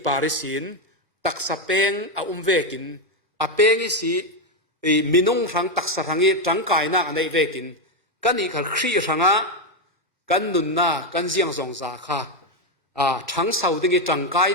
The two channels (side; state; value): both; normal; correlation 0.06